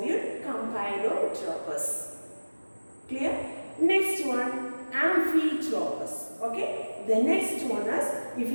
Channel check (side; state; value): both; inverted; correlation -1.00